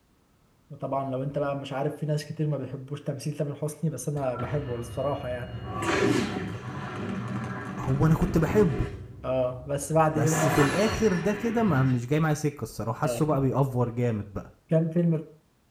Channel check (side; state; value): both; identical; correlation 1.00